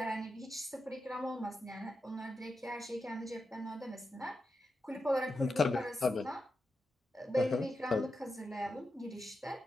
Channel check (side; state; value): both; normal; correlation 0.88